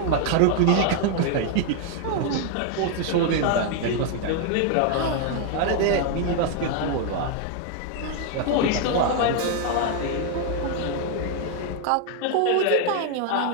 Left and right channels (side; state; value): both; different; correlation 0.00